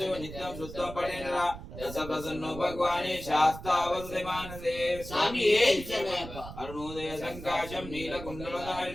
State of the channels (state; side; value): noise; right; rumble, 12 dB below the sound